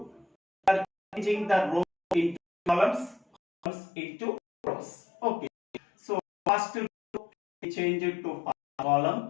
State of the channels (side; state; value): right; drops out; at 3.7 s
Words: changing the rows into columns, columns into rows. Okay, so first row we change it to first